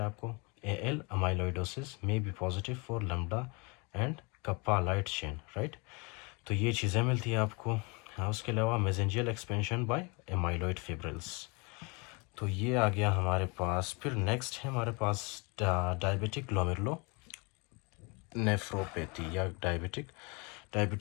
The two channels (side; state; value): right; quieter; 30.0 dB